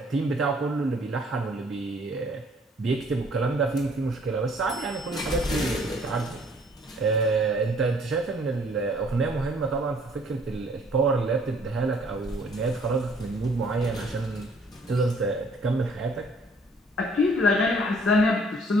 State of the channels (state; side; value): normal; both; correlation 0.60